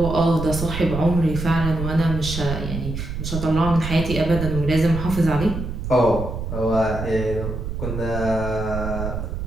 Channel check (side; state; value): right; noise; rumble, 5 dB below the sound